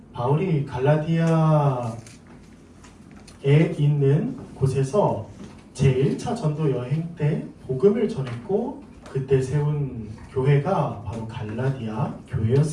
바울이 갈라디아에 있는 곳에서 제1차 전도 여행 때 복음을 전했고 그때 세운 교회가 바로 갈라디아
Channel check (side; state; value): both; identical; correlation 1.00